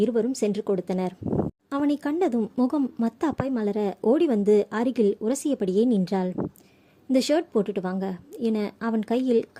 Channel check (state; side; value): identical; both; correlation 1.00